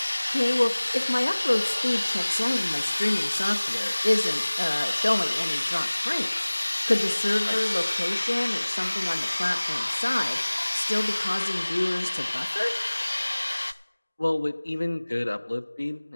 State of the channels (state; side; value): inverted; both; correlation -1.00